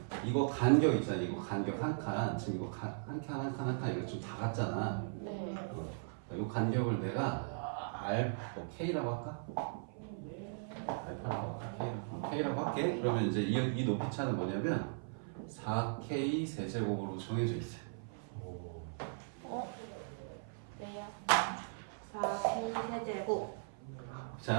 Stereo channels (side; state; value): left; silent; 52 dB below the other